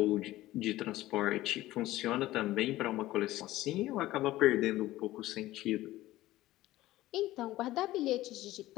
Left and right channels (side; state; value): right; quieter; 16.3 dB